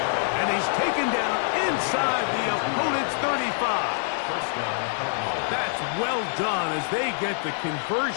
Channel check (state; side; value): silent; right; digital silence